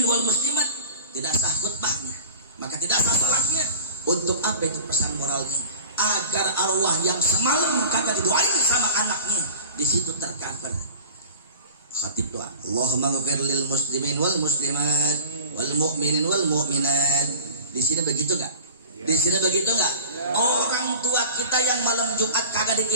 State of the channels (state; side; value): inverted; both; correlation -0.37